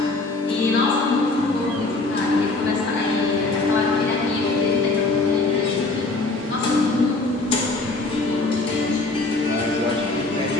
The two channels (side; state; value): right; quieter; 3.3 dB